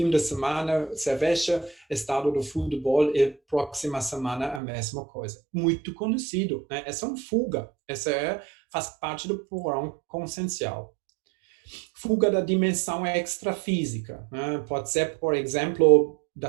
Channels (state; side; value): drops out; left; at 4.6 s